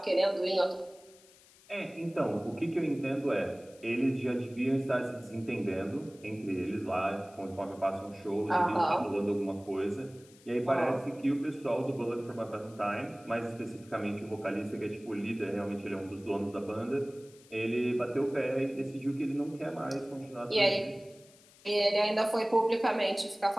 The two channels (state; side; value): noise; left; hiss, 26 dB below the sound